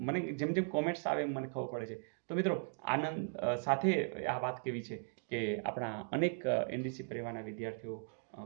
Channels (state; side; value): silent; left; digital silence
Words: મને જેમ જેમ કોમેન્ટ્સ આવે એમ મને ખબર પડે છે. તો મિત્રો આનંદ સાથે આ વાત કેવી છે કે આપણા અનેક એનડીસી પરિવારના વિદ્યાર્થીઓ